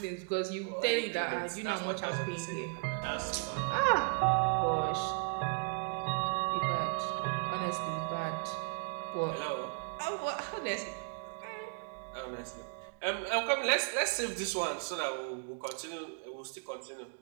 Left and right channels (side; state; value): left; quieter; 37.3 dB